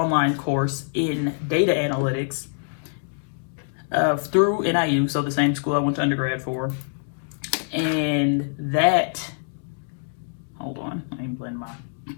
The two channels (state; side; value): silent; right; 62 dB below the other